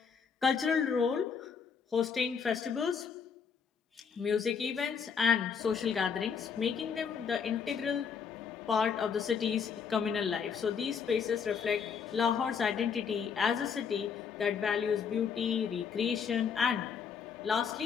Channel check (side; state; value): right; quieter; 6.5 dB